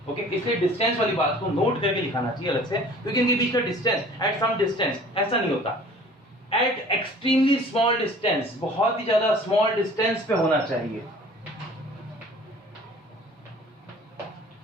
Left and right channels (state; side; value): normal; both; correlation 0.48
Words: ओके, इसलिए डिस्टेंस वाली बात को नोट करके लिखाना चाहिए अलग से, क्योंकि इनके बीच का डिस्टेंस एट सम डिस्टेंस ऐसा नहीं होता, एट एक्सट्रीमली स्मॉल डिस्टेंस, बहुत ही ज्यादा स्मॉल डिस्टेंस पे होना चाहिए,